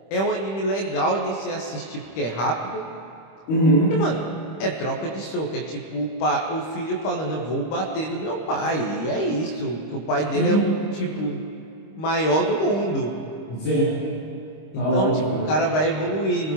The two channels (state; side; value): late; right; 25 ms